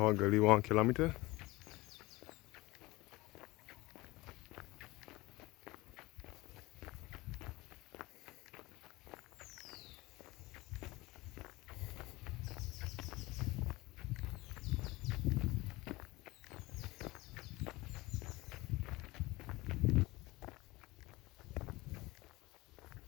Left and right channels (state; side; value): quieter; right; 20.8 dB